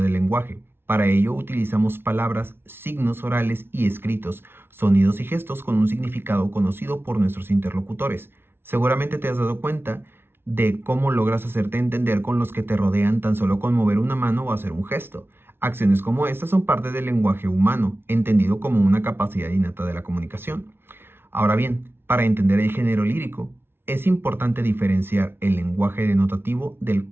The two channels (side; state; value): left; late; 0.11 ms